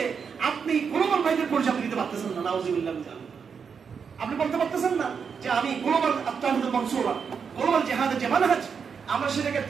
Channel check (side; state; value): left; quieter; 6.3 dB